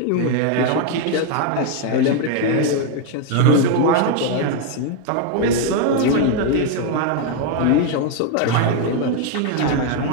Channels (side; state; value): both; different; correlation 0.01